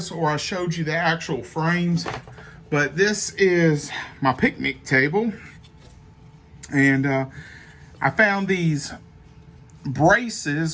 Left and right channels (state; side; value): identical; both; correlation 1.00